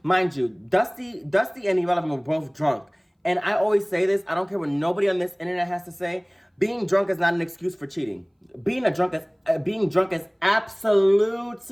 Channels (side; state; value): both; identical; correlation 1.00